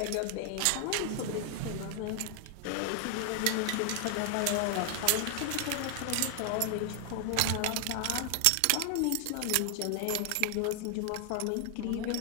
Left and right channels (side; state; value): both; different; correlation 0.00